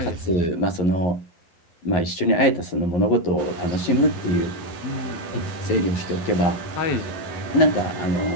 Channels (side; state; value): right; late; 11 ms